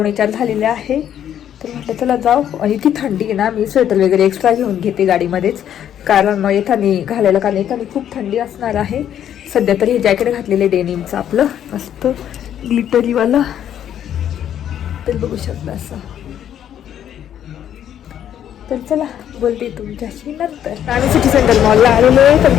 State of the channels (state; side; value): quieter; right; 10.1 dB